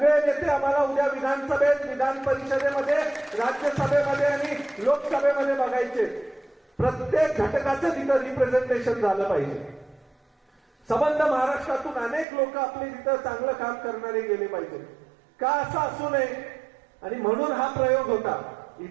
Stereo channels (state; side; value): drops out; left; at 12.2 s